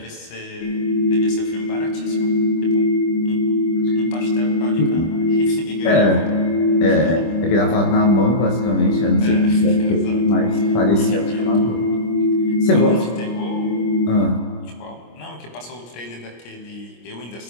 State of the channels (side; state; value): right; late; 25 ms